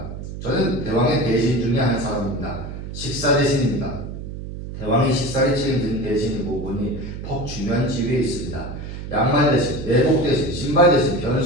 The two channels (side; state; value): right; noise; hum, 9 dB below the sound